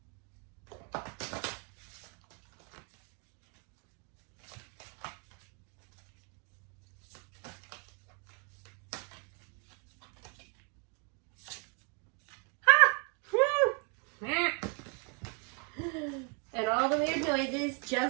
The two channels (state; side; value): quieter; left; 37.0 dB